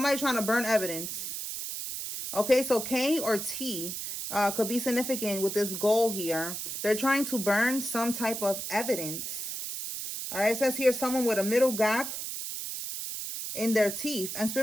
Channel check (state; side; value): noise; right; hiss, 5 dB below the sound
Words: trying to burn evidence. Okay, so K or T could be significant with this goal here. They're trying to burn some type of evidence. All right, it says here someone with a middle gap in their teeth. And